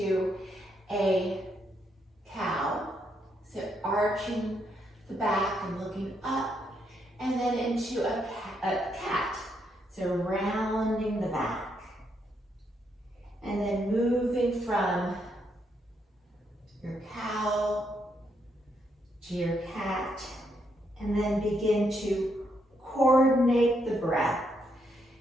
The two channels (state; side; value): normal; both; correlation 0.77